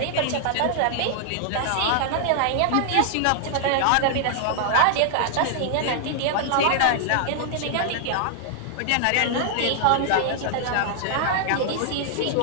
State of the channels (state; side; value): different; both; correlation -0.01